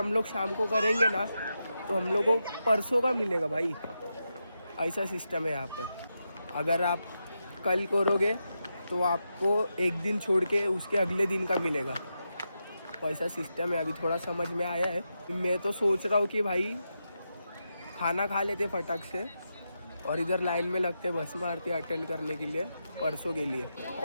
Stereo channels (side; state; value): both; inverted; correlation -0.87